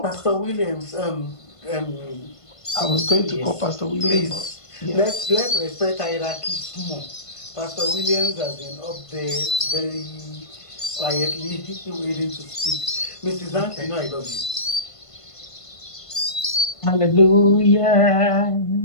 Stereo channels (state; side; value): late; right; 1.5 ms